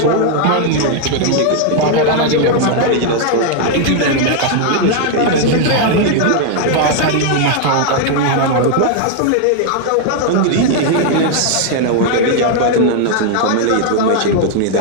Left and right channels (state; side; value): different; both; correlation 0.00